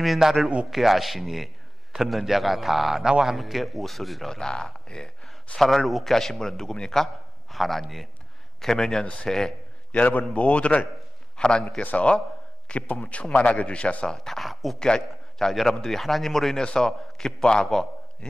나를 웃게 하시니 듣는 자가 다 나와 함께 웃으리로다. 예. 사라를 웃게 하신 분은 누굽니까? 하나님. 계명년 새해 여러분 모두를 하나님께서 기쁨 충만하게 주셔서 다 자, 여러분들이 하나님으로 인해서 기뻐하고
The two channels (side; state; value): both; normal; correlation 0.96